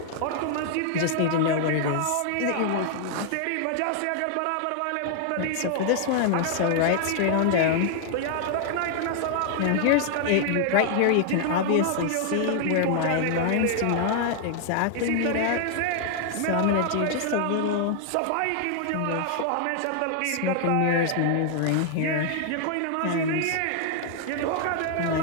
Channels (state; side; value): different; both; correlation 0.00